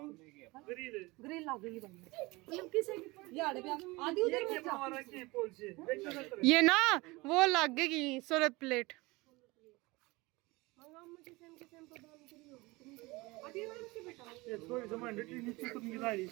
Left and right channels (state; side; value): quieter; left; 22.9 dB